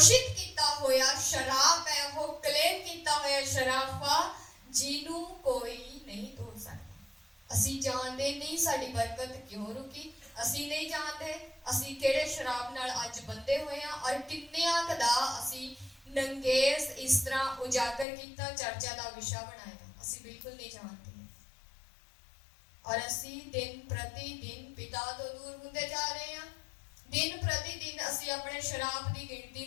ਕੀਤਾ ਹੋਇਆ ਸ਼ਰਾਬ ਹੈ, ਉਹ ਕਲੇਮ ਕੀਤਾ ਹੋਇਆ ਸ਼ਰਾਫਾ, ਜਿਹਨੂੰ ਕੋਈ ਨਹੀਂ ਤੋੜ ਸਕਦਾ। ਅਸੀਂ ਜਾਣਦੇ ਨਹੀਂ ਸਾਡੀ ਬਰਕਤ ਕਿਉਂ ਰੁਕੀ, ਅਸੀਂ ਨਹੀਂ ਜਾਣਦੇ ਅਸੀਂ ਕਿਹੜੇ ਸ਼ਰਾਬ ਨਾਲ ਅੱਜ ਬੰਦੇ ਹੋਏ ਹਾਂ, ਔਰ ਕਿੰਨਿਆਂ ਕੁ ਦਾ ਅਸੀਂ ਨੰਗੇਜ਼ ਇਸ ਤਰ੍ਹਾਂ ਉਜਾਗਰ ਕੀਤਾ, ਚਰਚਾ ਦਾ ਵਿਸ਼ਾ ਬਣਾਇਆ। ਅਸੀਂ ਬਿਲਕੁਲ ਨਹੀਂ ਜਾਣਦੇ। ਔਰ ਅਸੀਂ ਦਿਨ ਪ੍ਰਤੀ ਦਿਨ ਪਿਤਾ ਤੋਂ ਦੂਰ ਹੁੰਦੇ ਜਾ ਰਹੇ ਹਾਂ। ਦਿਨ ਪ੍ਰਤੀ ਦਿਨ ਅਸੀਂ ਆਪਣੇ ਸ਼ਰਾਬ ਦੀ ਗਿਣਤੀ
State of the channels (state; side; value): drops out; right; at 18.1 s